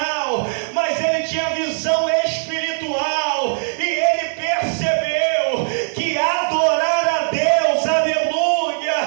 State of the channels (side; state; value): left; silent; digital silence